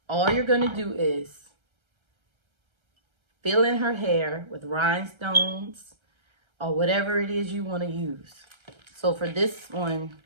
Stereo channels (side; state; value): left; late; 1.3 ms